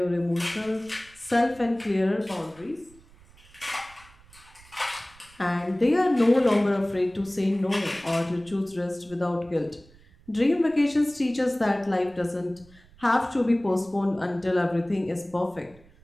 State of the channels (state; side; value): noise; right; rumble, 26 dB below the sound